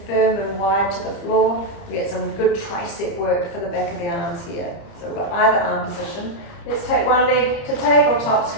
firm and wide to the floor. We get some good tricep work for the back of the arms here. So we've got either arm position. Let's take one leg to tabletop,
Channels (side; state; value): right; late; 30 ms